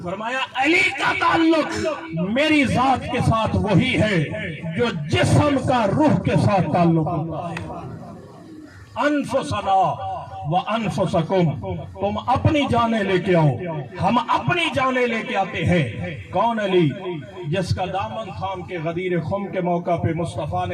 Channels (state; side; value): identical; both; correlation 1.00